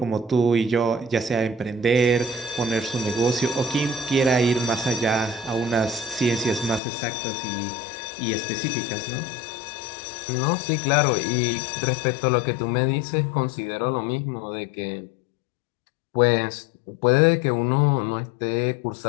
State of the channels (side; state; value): right; drops out; at 6.8 s